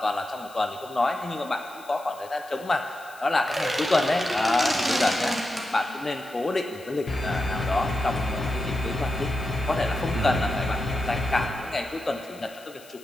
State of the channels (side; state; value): left; noise; hiss, 22 dB below the sound